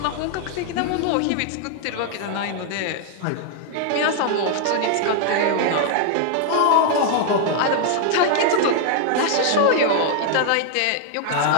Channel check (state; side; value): different; both; correlation 0.00